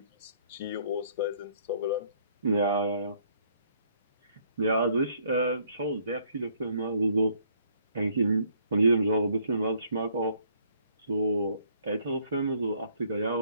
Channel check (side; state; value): both; inverted; correlation -0.65